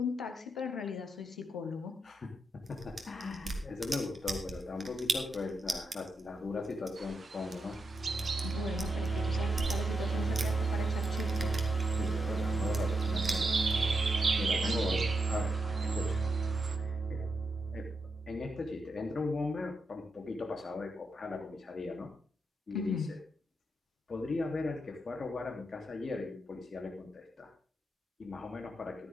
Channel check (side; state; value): both; normal; correlation 0.84